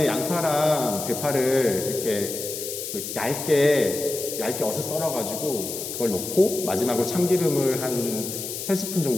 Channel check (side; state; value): left; noise; hiss, 6 dB below the sound